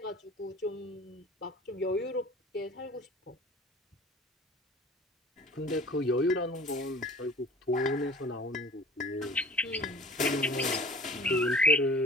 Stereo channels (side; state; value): both; normal; correlation 0.45